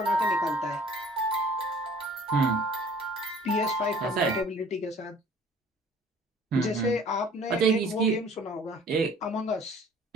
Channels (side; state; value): both; normal; correlation 0.51